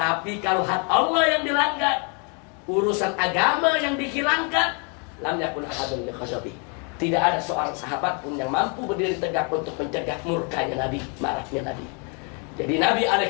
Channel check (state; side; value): quieter; right; 36.5 dB